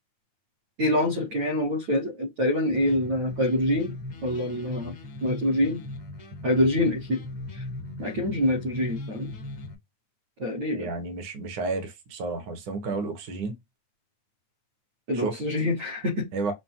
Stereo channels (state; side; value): late; left; 9.1 ms